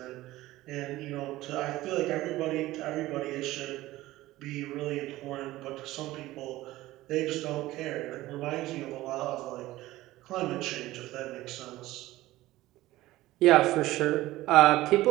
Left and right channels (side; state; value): left; quieter; 17.0 dB